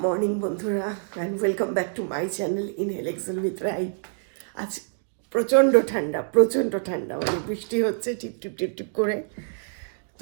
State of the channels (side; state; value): left; silent; digital silence